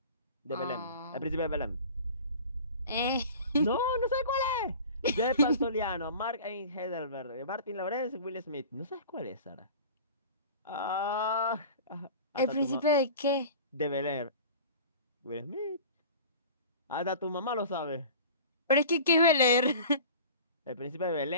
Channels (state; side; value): inverted; both; correlation -0.40